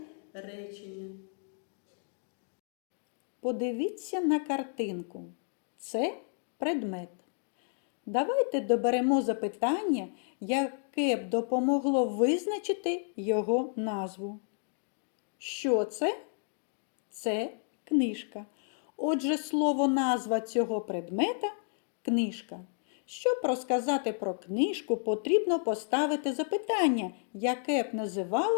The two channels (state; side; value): silent; right; 57 dB below the other